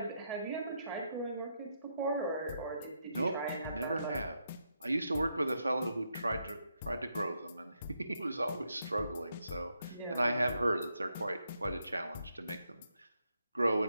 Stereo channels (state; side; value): inverted; both; correlation -0.80